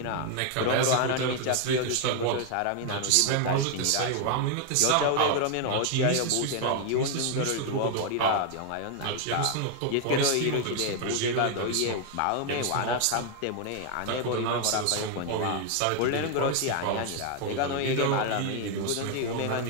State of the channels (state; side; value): different; both; correlation 0.00